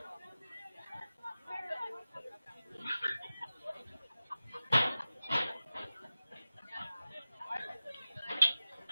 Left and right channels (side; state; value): both; inverted; correlation -0.94